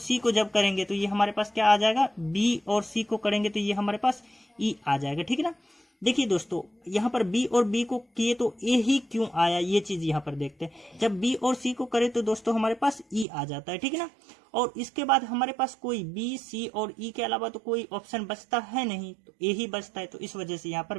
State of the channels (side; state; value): left; drops out; at 13.2 s